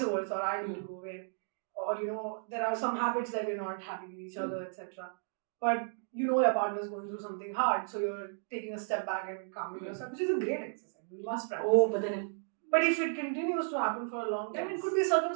versa, or I need to go away, or there are some habits that we're not happy with each other, etc. But your partner is going through something hard, so you're taking a step back and calming yourself, which is a great exercise. We must practice. Oh, but if it continues to happen for a long time, it could be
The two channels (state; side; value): silent; left; digital silence